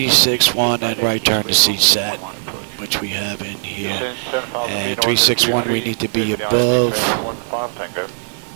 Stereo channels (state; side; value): silent; left; digital silence